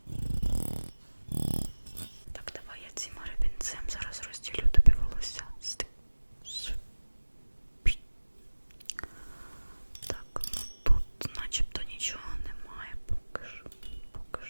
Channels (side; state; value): both; inverted; correlation -1.00